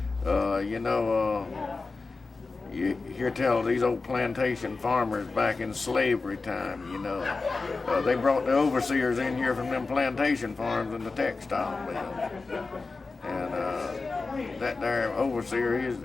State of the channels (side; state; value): right; quieter; 3.9 dB